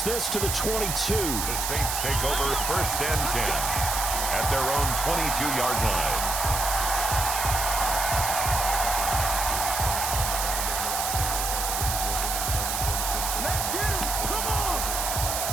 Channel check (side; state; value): right; noise; hiss, 1 dB below the sound